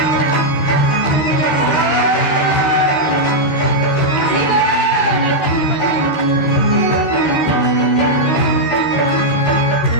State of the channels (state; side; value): late; right; 13 ms